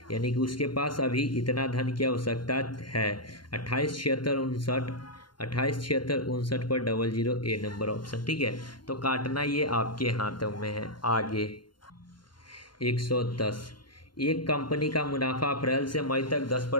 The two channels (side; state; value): right; late; 0.72 ms